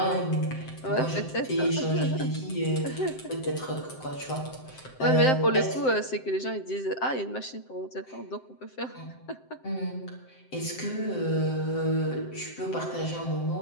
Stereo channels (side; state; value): right; late; 7.7 ms